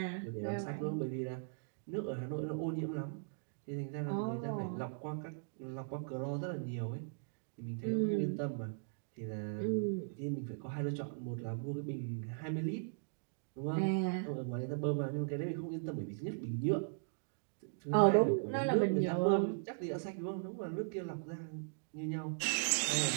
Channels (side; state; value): left; silent; digital silence